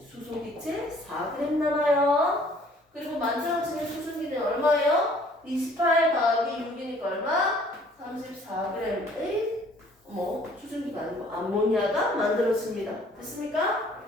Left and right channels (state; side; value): normal; both; correlation 0.57